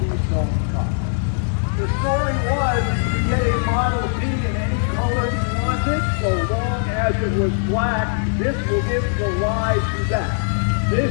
D-Stone cops. The story was that you could get a Model T in any color you wanted, so long as it was black. This will give you a live spec.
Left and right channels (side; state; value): right; silent; digital silence